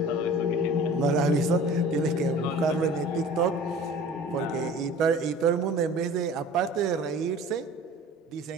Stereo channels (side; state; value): both; normal; correlation 0.43